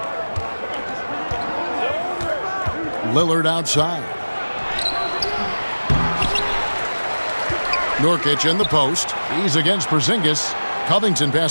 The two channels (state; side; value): inverted; both; correlation -1.00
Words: Lillard outside. Nurkic in the post. He's against Porzingis. Covington